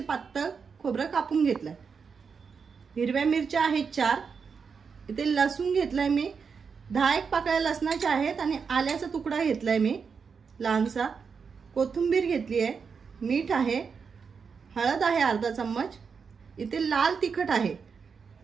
पातळ खोबरं कापून घेतलंय। हिरव्या मिरच्या आहेत 4। इथे लसूण घेतलाय मी 10 पाकळ्या लसणाच्या आहेत आणि आल्याचा तुकडा घेतलाय मी लहानसा। कोथिंबीर घेतली आहे, मीठ आहे, हळद आहे अर्धा चम्मच। इथे लाल तिखट आहे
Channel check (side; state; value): left; quieter; 5.8 dB